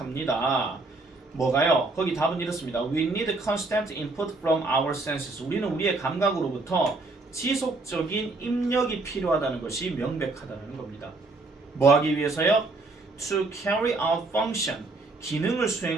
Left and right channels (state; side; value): quieter; left; 3.2 dB